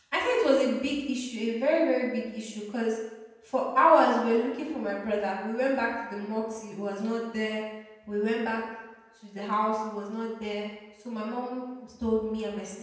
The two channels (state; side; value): identical; both; correlation 1.00